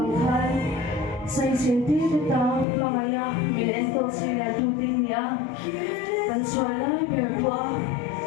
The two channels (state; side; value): drops out; right; at 2.7 s